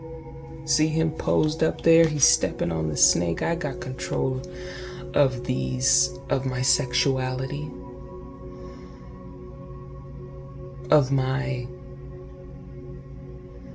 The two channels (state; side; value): identical; both; correlation 1.00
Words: see him posed up there, he's stepping on the snake. I got control of my sexuality, of my